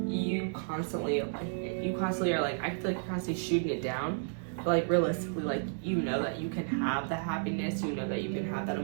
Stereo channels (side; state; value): left; silent; 56 dB below the other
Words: you constantly are like, I feel like you're constantly shooting it down. But like realistically, like you know that you can have the happiness, you know that you can have that